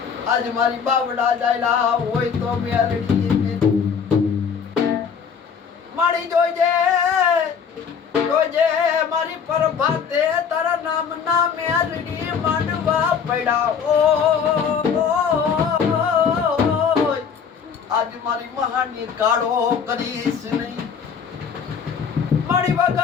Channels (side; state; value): right; quieter; 6.7 dB